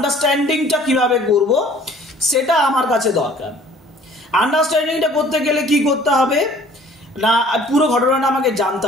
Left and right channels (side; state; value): both; normal; correlation 0.53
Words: কিভাবে করব সেটা আমার কাছে দরকার। আন্ডারস্ট্যান্ডিংটা করতে গেলে কি করতে হবে না, পুরো ঘটনাটা আমাকে জানতে